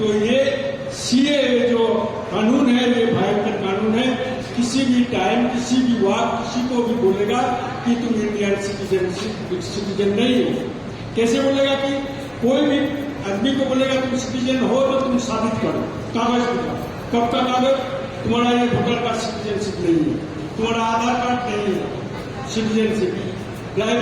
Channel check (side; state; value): both; identical; correlation 1.00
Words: ये सीए जो कानून है ये भयंकर कानून है। किसी भी टाइम, किसी भी वक्त किसी को भी बोलेगा कि तुम इंडियन सिटीजन नहीं हो। कैसे बोलेगा कि कोई भी आदमी को बोलेगा तुम सिटीजन हो तो तुम साबित करो, कागज दिखाओ। कब का कागज? तुम्हारा ये वोटर कार्ड सिटीजनशिप नहीं है, तुम्हारा आधार कार्ड नहीं है सिटीजनशिप,